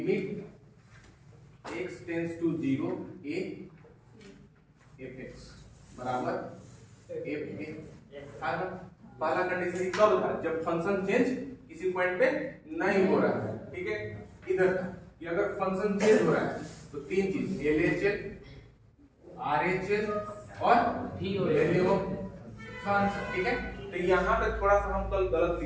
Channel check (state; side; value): identical; both; correlation 1.00